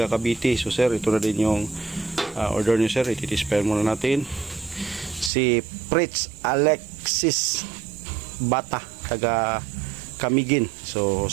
Cavite. So Sir, ito na din yung order niyo, Sir. Ititispire muna natin. Si Fritz Alexis Bata, taga Camiguin. So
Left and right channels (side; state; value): left; drops out; at 5.3 s